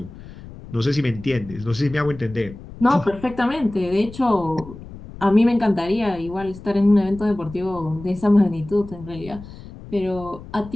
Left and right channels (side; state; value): left; noise; rumble, 16 dB below the sound